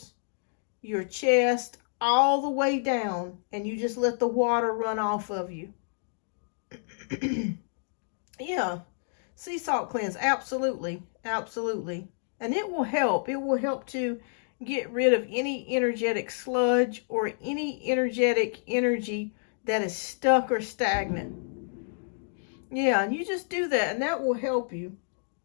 your chest, all the way down, and you just let the water run off of you. Yeah, sea salt cleanse, absolutely, absolutely. And it will help. It will help to get rid of any energetic sludge or any energetic energy that is stuck or stagnant. Yeah, and you just do that, and that will help you.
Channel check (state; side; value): silent; right; digital silence